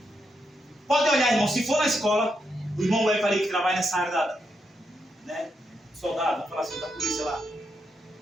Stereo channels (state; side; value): normal; both; correlation 0.82